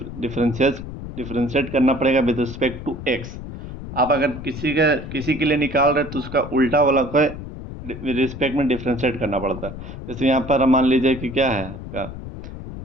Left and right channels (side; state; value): left; noise; rumble, 10 dB below the sound